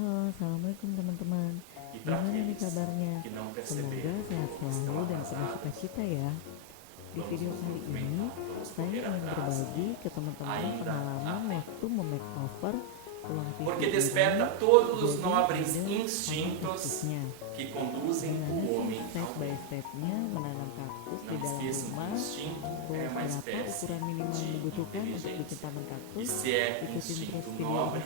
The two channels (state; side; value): different; both; correlation 0.00